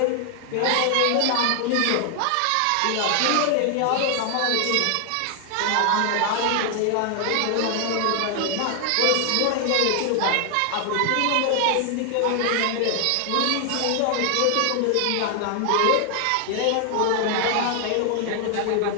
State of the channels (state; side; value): different; both; correlation 0.00